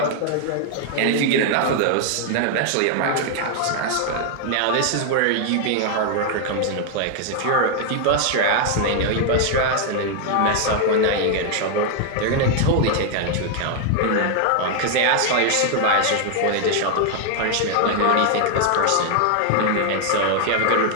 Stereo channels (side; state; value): both; different; correlation 0.00